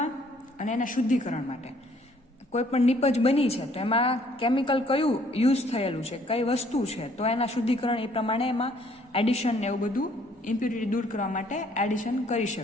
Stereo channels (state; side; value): normal; both; correlation 0.62